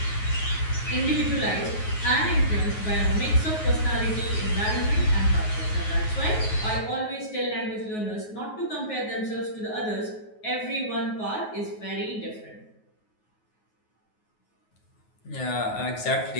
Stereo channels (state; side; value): late; right; 9.4 ms